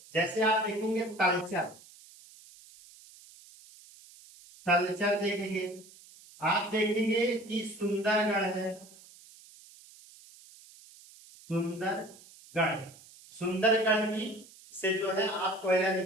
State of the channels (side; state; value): right; noise; hiss, 22 dB below the sound